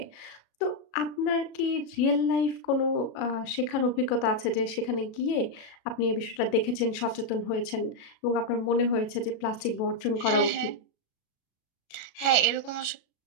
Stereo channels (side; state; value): right; late; 37 ms